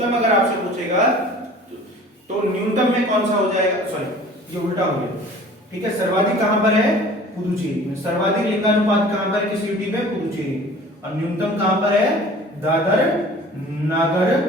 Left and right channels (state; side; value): normal; both; correlation 0.46